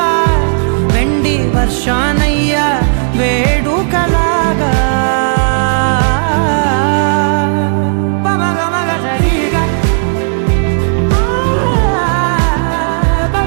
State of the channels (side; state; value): left; silent; digital silence